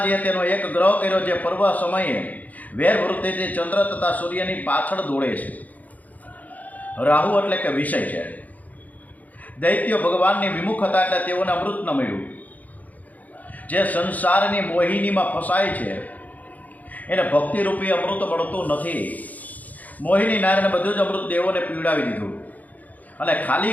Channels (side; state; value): right; late; 0.078 ms